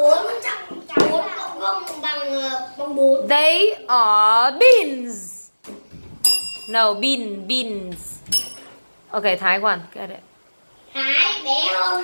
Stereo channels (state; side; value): inverted; both; correlation -1.00